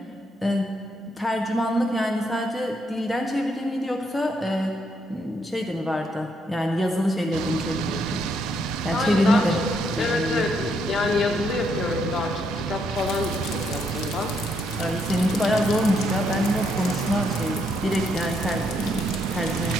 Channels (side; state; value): both; normal; correlation 0.75